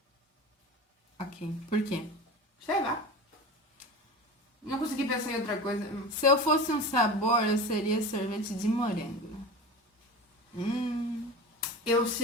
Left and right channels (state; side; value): normal; both; correlation 0.31